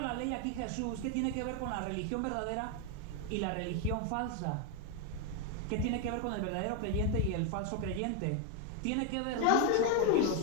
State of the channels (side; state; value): both; different; correlation 0.01